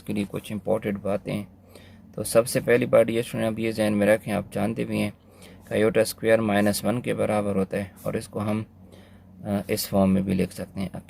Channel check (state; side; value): identical; both; correlation 1.00